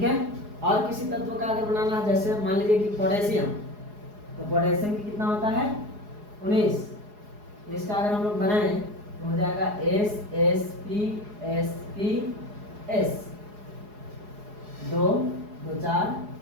है। और किसी तत्व का अगर बनाना है, जैसे मान लीजिए कि पोटेशियम, तो पोटेशियम की कितना होता है 19, इसका अगर हम लोग बनाएं तो हो जाएगा SsPsPs, 2 2 4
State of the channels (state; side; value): late; left; 4.8 ms